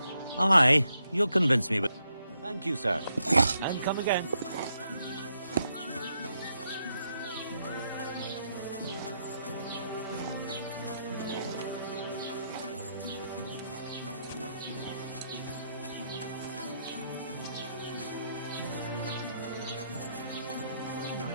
Aye, you'll convince me with... Thank you, sir. And come again.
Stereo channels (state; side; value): inverted; both; correlation -0.79